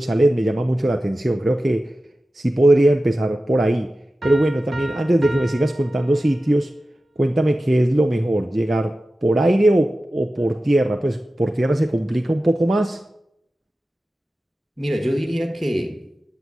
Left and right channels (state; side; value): normal; both; correlation 0.94